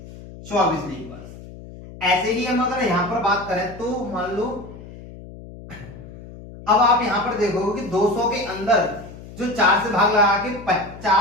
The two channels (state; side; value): noise; left; hum, 16 dB below the sound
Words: 24 लीप वर्ष। ऐसे ही हम अगर यहां पर बात करें तो मान लो अब आप यहां पर देखोगे कि 200 के अंदर जो 4 से भाग लगा के